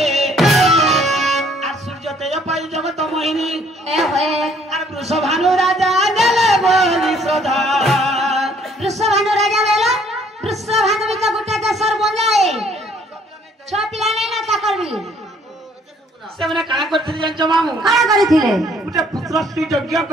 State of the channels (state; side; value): normal; both; correlation 0.62